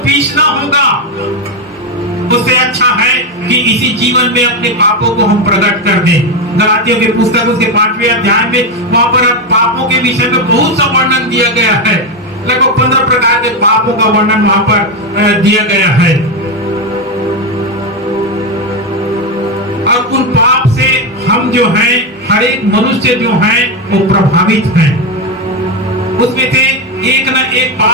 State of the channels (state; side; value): normal; both; correlation 0.09